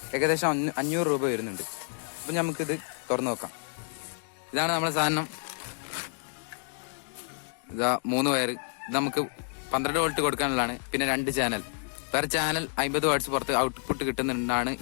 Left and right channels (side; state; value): right; silent; 58 dB below the other